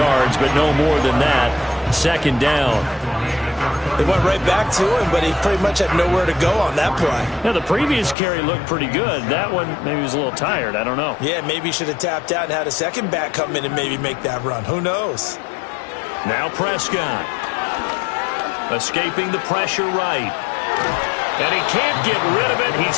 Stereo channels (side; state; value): right; drops out; at 8.2 s